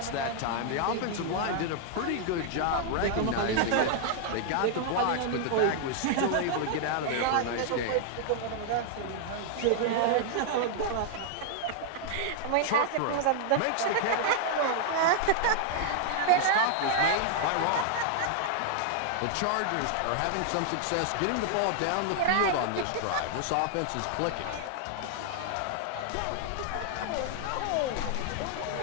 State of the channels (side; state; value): both; different; correlation 0.00